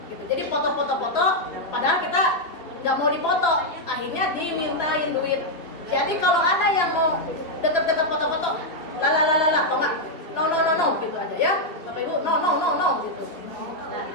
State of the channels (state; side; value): late; right; 2.9 ms